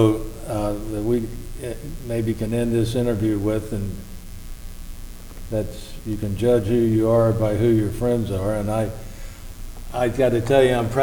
that we maybe can end this interview with, and that's you can judge who you are by who your friends are. And I got to tell you, I'm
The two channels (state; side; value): identical; both; correlation 1.00